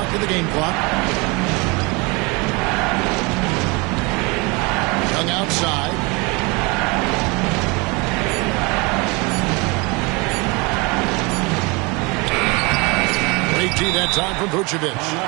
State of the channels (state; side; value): quieter; left; 27.5 dB